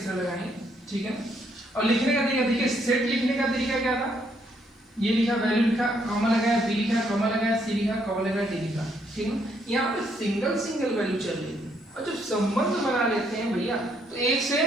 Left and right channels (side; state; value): both; normal; correlation 0.72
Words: तरह लगाएंगे, ठीक है। और लिखने का तरीका देखिए, सेट लिखने का तरीका क्या था? ये लिखा, वैल्यू लिखा, कॉमा लगाया, b लिखा, कॉमा लगाया, c लिखा, कॉमा लगाया, d लिखा, ठीक है। यहाँ पे सिंगल वैल्यू चल रही है और जब संबंध बना लेते हैं भैया तो एक से